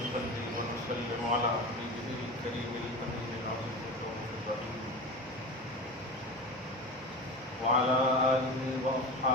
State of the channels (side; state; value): both; normal; correlation 0.28